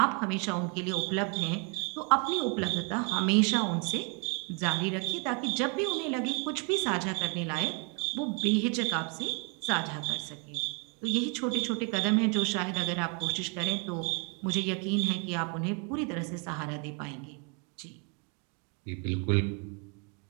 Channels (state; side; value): quieter; left; 35.6 dB